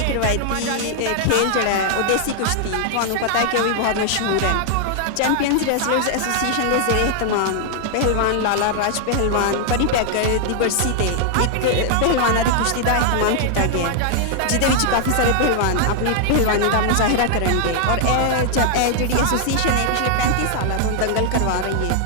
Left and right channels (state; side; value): different; both; correlation 0.00